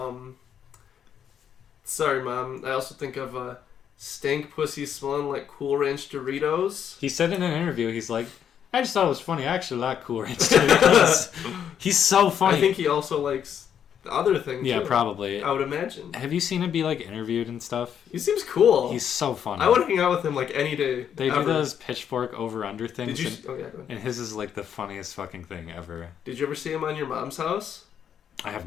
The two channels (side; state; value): right; quieter; 8.7 dB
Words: Sorry, Mom. I also think of stank pussy smelling like Cool Ranch Doritos. He said in an interview, he's like, I just thought it was funny. I actually like Cool Ranch Doritos. He's so funny. I think he also likes... the other thing, yeah, too, probably. I would imagine. Have you seen him be, like, interviewed and stuff? He seems cool. He's so funny. I would hang out with him, like, any day. They do those pitchfork over-under things. Did you... Oh, yeah, go ahead. And his is, like, the funniest fucking thing ever. Did you ever see him on your mom's house? I have